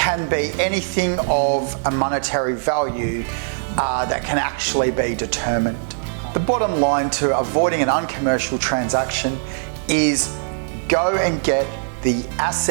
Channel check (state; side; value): silent; left; digital silence